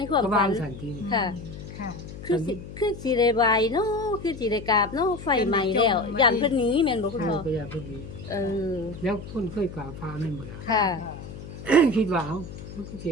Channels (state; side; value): noise; left; hum, 12 dB below the sound